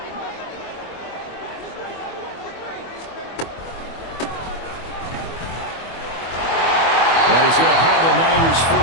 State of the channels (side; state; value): right; late; 24 ms